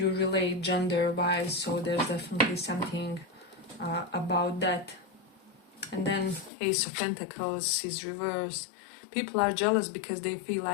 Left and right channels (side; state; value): right; drops out; at 6.5 s